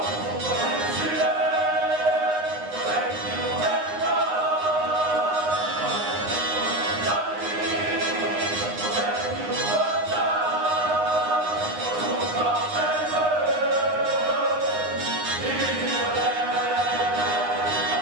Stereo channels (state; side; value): late; left; 9.7 ms